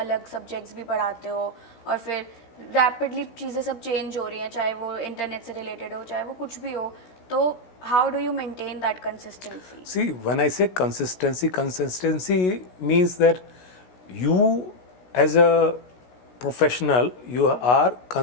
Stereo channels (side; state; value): right; late; 16 ms